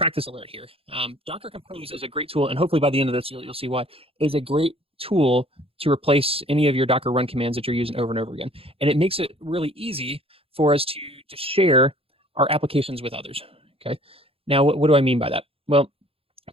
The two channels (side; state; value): left; late; 0.27 ms